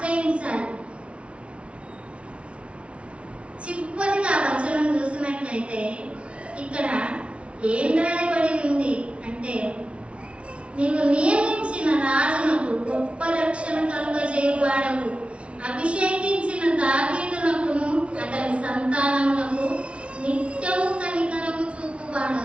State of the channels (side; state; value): left; late; 0.060 ms